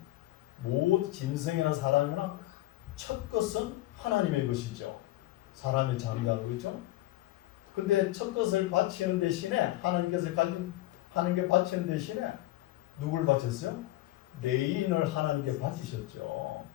짐승이나 사람이나 첫 것은 하나님의 것이죠. 사람의 장자로, 그렇죠? 근데 첫 것을 바치는 대신에 하나님께서 하나님께 바치는 대신에 누굴 바쳤어요? 레인을 하나님께 바치셨죠.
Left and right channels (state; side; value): quieter; right; 16.8 dB